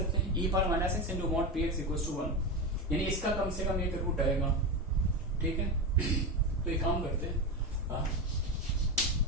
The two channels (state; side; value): normal; both; correlation 0.18